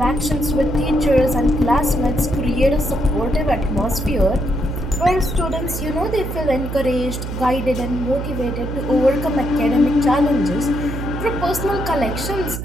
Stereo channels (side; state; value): right; noise; hum, 5 dB below the sound